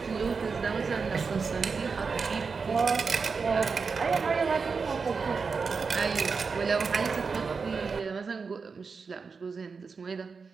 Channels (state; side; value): quieter; left; 5.0 dB